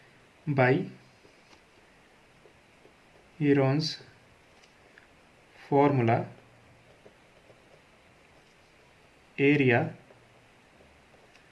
by Heron's formula area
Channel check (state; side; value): identical; both; correlation 1.00